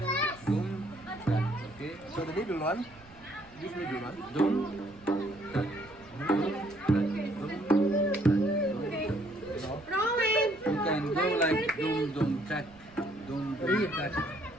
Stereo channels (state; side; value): noise; right; rumble, 24 dB below the sound